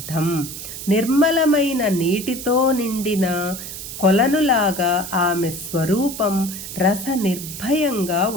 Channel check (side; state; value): right; noise; hiss, 9 dB below the sound